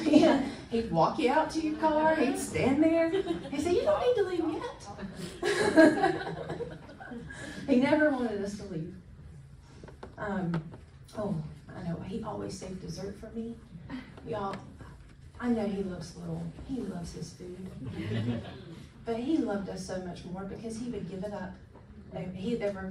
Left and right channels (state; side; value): identical; both; correlation 1.00